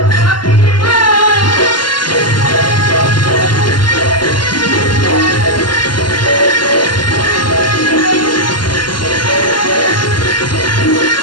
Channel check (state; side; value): late; right; 0.71 ms